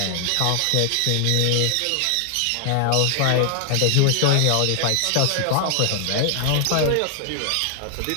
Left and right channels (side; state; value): both; different; correlation 0.00